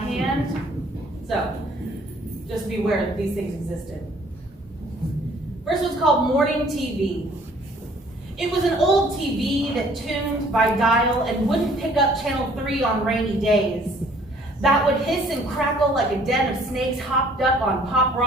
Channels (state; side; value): normal; both; correlation 0.58